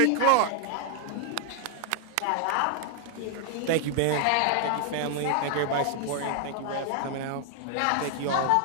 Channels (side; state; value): both; different; correlation 0.00